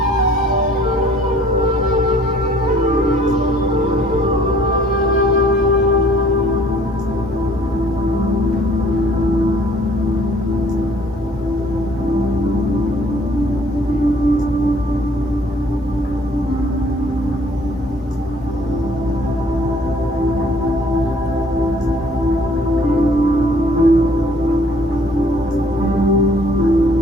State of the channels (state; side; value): normal; both; correlation 0.58